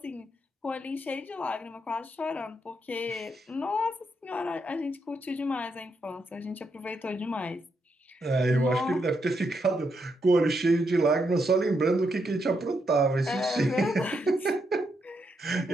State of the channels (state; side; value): normal; both; correlation 0.80